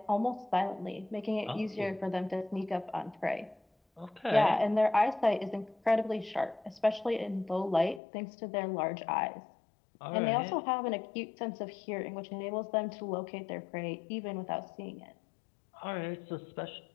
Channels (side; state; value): right; drops out; at 8.0 s